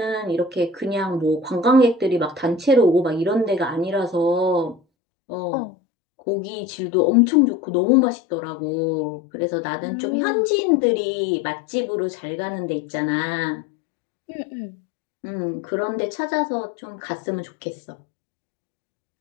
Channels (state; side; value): drops out; right; at 4.8 s